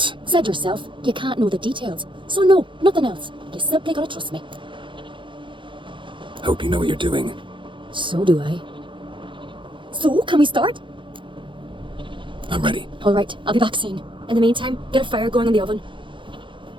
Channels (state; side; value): late; left; 0.24 ms